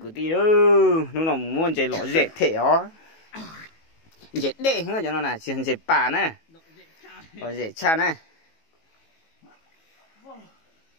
tí đó, lúc nào muốn chạy lọ dễ thể ó. Dễ đê hơn cho nó là chỉ dễ bà nè. Rồi dễ cha nè.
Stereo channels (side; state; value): right; late; 18 ms